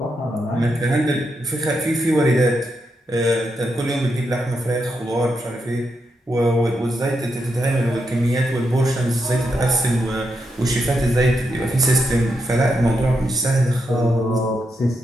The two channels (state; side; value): normal; both; correlation 0.83